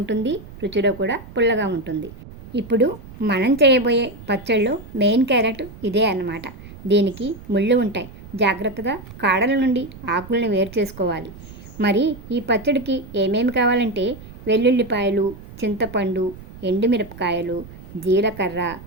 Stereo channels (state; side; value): noise; right; rumble, 17 dB below the sound